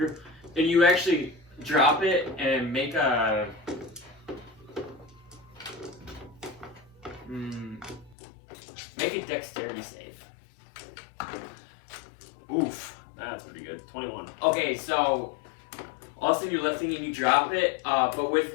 And you actually drop it and make a. Make a dexterity save. Oof, that's pretty good. 21. Okay, so all of a sudden you're lifting and you drop it, but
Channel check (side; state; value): right; drops out; at 8.2 s